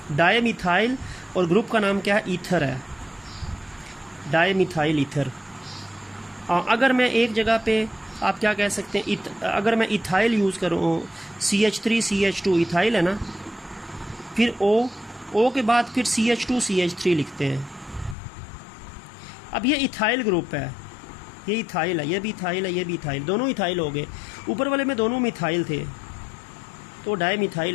डायमिथाइल, और ग्रुप का नाम क्या है, ईथर है, डायमिथाइल ईथर। अगर मैं एक जगह पे आप क्या कह सकते हैं, अगर मैं इथाइल यूज़ करूँ, CH3 CH2 इथाइल है ना, फिर O के बाद फिर CH2 CH3 लिखते हैं। अब ये इथाइल ग्रुप है, ये इथाइल है, ये भी इथाइल है, ये भी इथाइल, दोनों इथाइल हो गए। ऊपर वाले में दोनों मिथाइल थे तो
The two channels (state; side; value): drops out; right; at 18.2 s